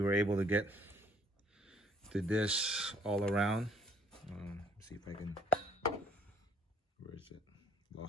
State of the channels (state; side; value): normal; both; correlation 0.61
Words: were able to get to this all around. See if I can, where is it?